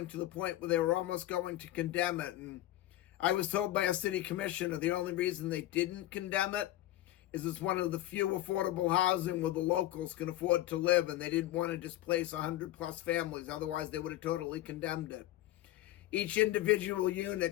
to the point where they were almost going to condemn it, and I was told by a city commissioner the only reason they didn't condemn it is it's one of the few affordable housing where the locals can afford to live, and they didn't want to displace 100+ families. Otherwise, they would have totally condemned it. Each individual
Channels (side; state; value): right; quieter; 14.8 dB